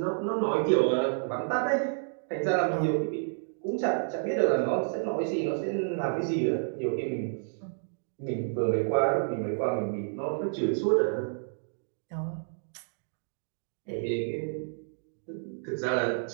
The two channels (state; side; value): silent; left; digital silence